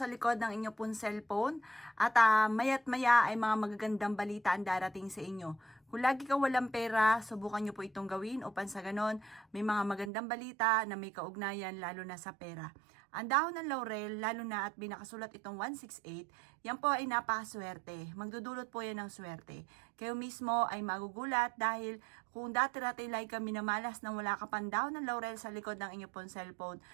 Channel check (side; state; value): left; drops out; at 10.1 s